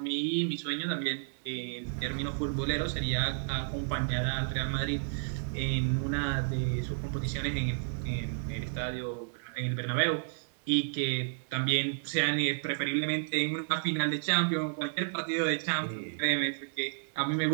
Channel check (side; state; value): left; silent; digital silence